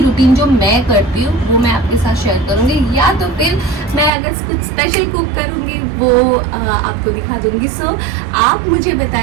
रूटीन जो मैं करती हूँ वो मैं आपके साथ शेयर करूँगी, या तो फिर मैं अगर कुछ स्पेशल कुक करूँगी वो आपको दिखा दूँगी। सो आप मुझे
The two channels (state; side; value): drops out; left; at 4.1 s